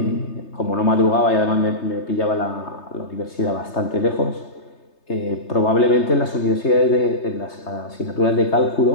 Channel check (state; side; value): late; right; 3.3 ms